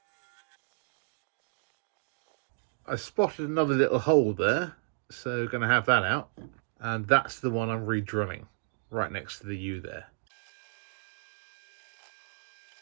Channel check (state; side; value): silent; left; 56 dB below the other